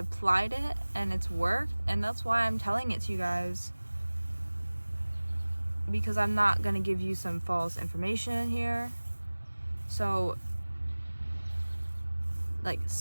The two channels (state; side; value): inverted; both; correlation -1.00